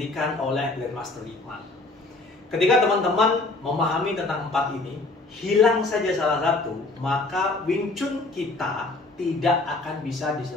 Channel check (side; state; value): right; quieter; 3.2 dB